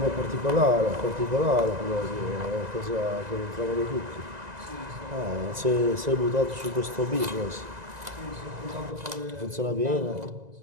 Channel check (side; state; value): left; late; 2.0 ms